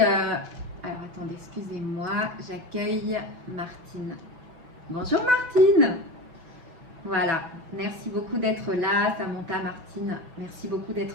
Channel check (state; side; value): late; left; 6.0 ms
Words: attendez, excusez-moi, j'accueille Martine. Bonjour Martine. Voilà, merci beaucoup d'être là, Samantha, Martine. Merci beaucoup